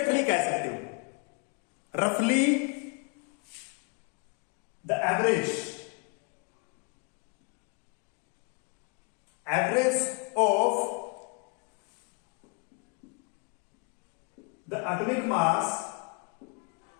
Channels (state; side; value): quieter; right; 34.0 dB